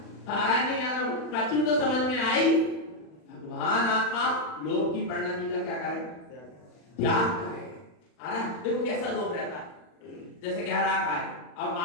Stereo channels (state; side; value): late; right; 40 ms